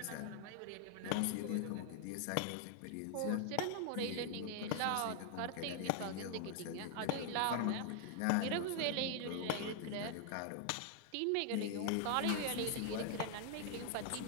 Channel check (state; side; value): different; both; correlation 0.00